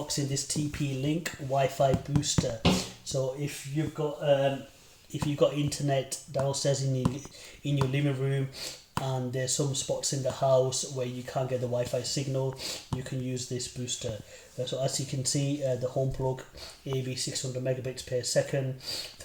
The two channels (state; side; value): identical; both; correlation 1.00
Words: this TP-Link Wi-Fi booster. So if you've got internet downstairs in your living room and there's some spots in the house where you can't get the Wi-Fi signal, you can use this booster. So as you can see, the HomePlug AV600 megabits per second,